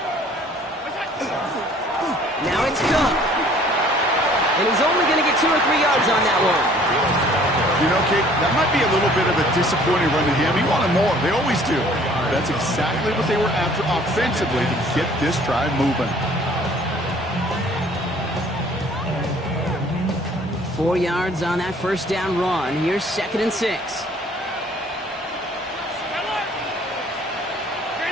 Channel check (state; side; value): normal; both; correlation 0.55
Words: Now it's Cook. And he's only going to get 2 or 3 yards on that one. You know, Kate, that might be a little bit of a disappointing run to him. He wanted more. They always do. That's exactly what they were after offensively to get this drive moving. 4 yards on that first down run. Here's 2nd and 6.